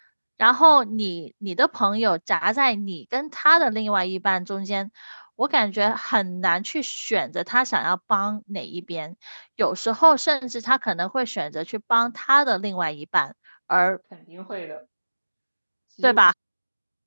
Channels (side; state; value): both; inverted; correlation -1.00